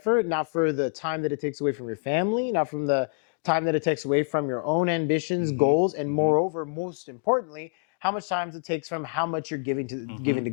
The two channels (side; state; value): right; silent; digital silence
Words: not for the time that it takes away from your family, not from the time that it takes away from your own ambitions, goals, and moreover, most importantly, how much time it takes from how much you're giving to